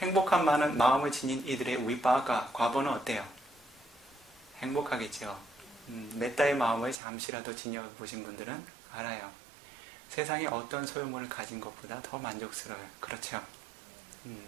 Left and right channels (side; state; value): left; drops out; at 7.0 s